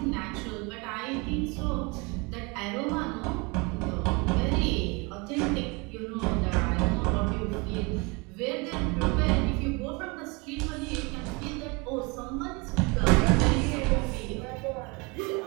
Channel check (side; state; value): left; quieter; 28.3 dB